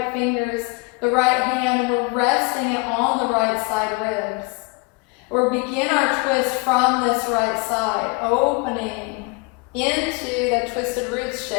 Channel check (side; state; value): right; quieter; 29.0 dB